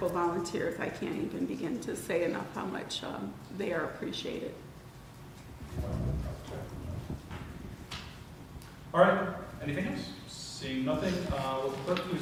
volunteers, I can't even begin to say enough how much they are appreciated. All right, anything else? Seeing nothing, will the clerk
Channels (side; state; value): both; identical; correlation 1.00